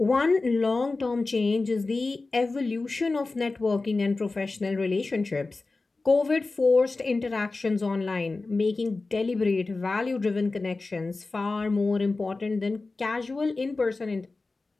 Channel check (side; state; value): right; quieter; 3.5 dB